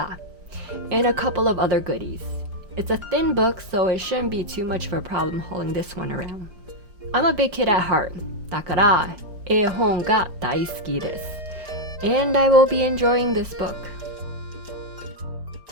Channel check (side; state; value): left; late; 5.0 ms